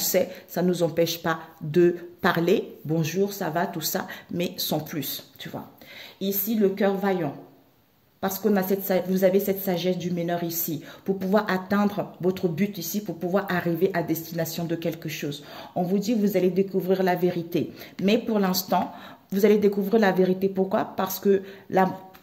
ça ne nous empêche pas de parler, bonjour, ça va, tout ça, mais sans plus, tu vois. Ici, le cœur vaillant. Parce qu'on a vous avez cette sagesse du meneur ici, pour pouvoir atteindre votre but ici, pour pouvoir arriver à destination de quelque chose. On vous dit, vous allez découvrir la vérité. Mais pour l'instant, vous allez découvrir la vérité. Pourquoi? Parce que,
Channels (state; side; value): identical; both; correlation 1.00